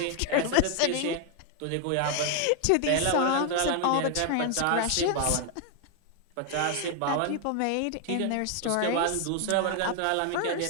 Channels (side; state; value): both; different; correlation 0.00